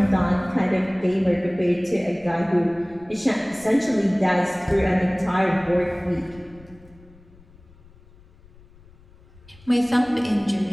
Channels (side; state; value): left; noise; rumble, 25 dB below the sound